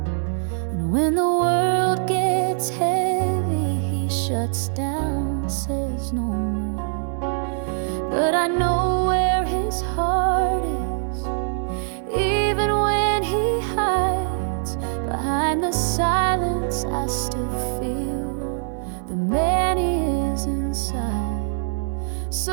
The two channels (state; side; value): silent; left; 63 dB below the other